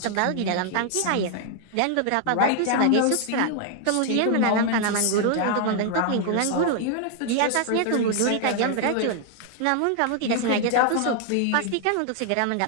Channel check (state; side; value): different; both; correlation 0.00